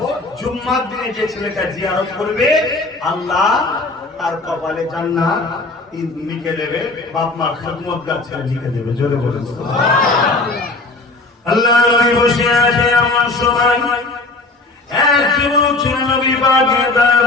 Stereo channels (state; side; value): quieter; right; 3.2 dB